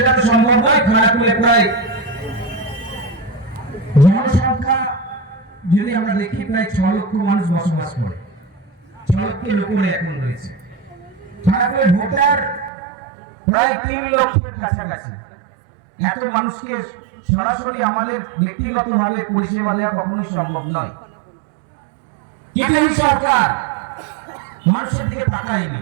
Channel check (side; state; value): left; drops out; at 12.7 s